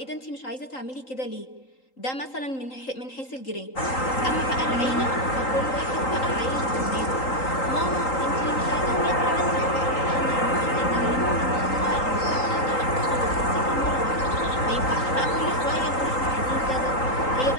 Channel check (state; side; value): late; right; 3.8 ms